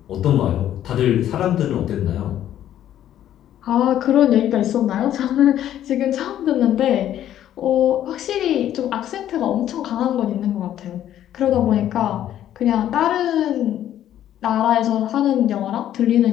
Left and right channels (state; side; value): quieter; right; 11.5 dB